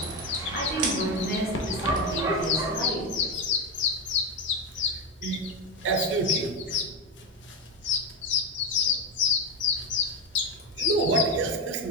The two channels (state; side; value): normal; both; correlation 0.13